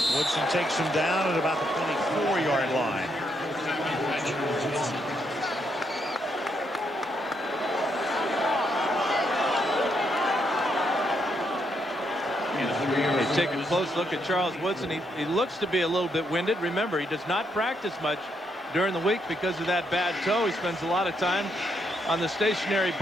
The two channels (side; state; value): both; normal; correlation 0.76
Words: Woodson takes him down at about the 24-yard line. take a close look at Charles Woodson. He looks to be a little bit winded. Remember, he does not practice much during the week because of that bad toe. He spends a lot of time on the stationary